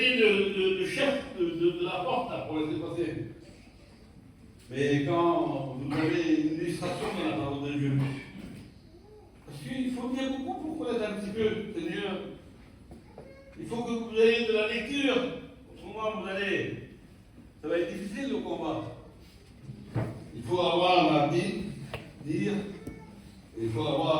le chef de la porte là, pour laisser passer. Mais quand vous avez une illustration dans la parole de Dieu, parce qu'il faut bien beaucoup pour connaître un petit peu, Seigneur. Il faut que vous ayez de la lecture. Autrement, ça va être difficile le combat. Il faut avoir la Bible, lire, et il faut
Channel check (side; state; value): both; identical; correlation 1.00